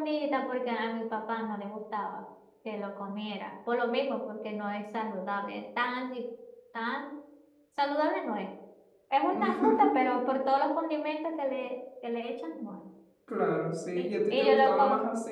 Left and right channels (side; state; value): both; identical; correlation 1.00